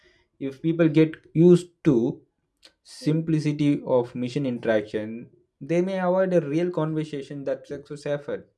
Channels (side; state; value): both; identical; correlation 1.00